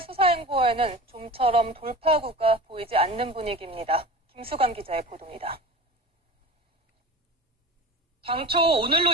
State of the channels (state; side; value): normal; both; correlation 0.34